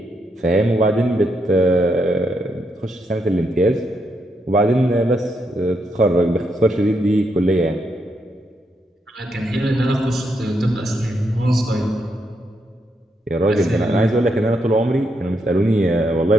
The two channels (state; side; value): normal; both; correlation 0.79